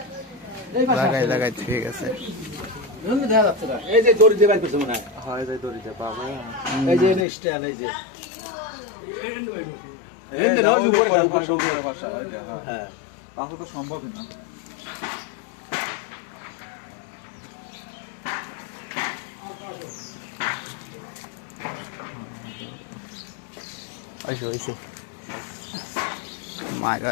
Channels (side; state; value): right; drops out; at 7.2 s